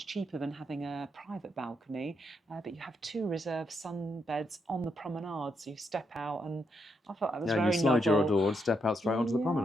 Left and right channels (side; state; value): both; normal; correlation 0.79